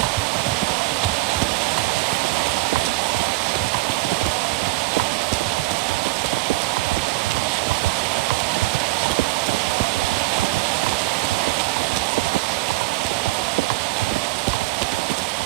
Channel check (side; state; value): left; quieter; 21.4 dB